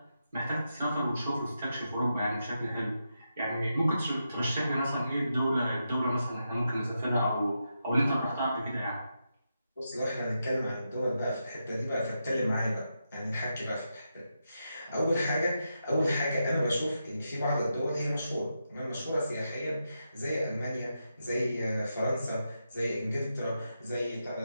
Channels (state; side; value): inverted; both; correlation -0.86